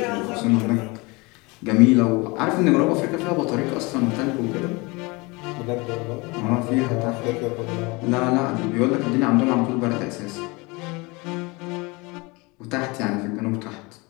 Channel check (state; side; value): quieter; right; 25.8 dB